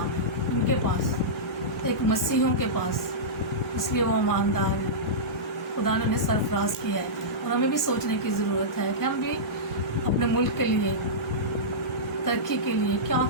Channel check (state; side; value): normal; both; correlation -0.15